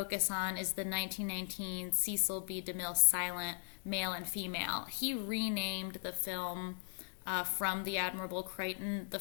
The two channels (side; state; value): right; silent; digital silence